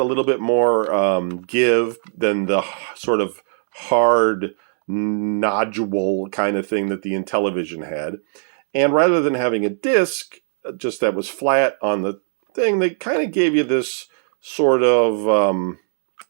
a little bit more give than the sort of hard nodule kind of thing that the Intellivision had. And rather than having a disc just that was flat on the thing, they kind of gave you this sort of,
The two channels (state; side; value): silent; left; digital silence